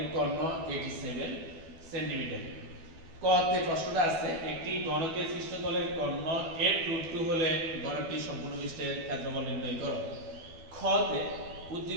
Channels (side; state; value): left; late; 12 ms